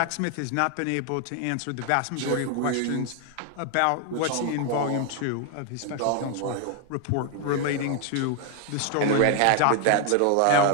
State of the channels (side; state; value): both; different; correlation 0.00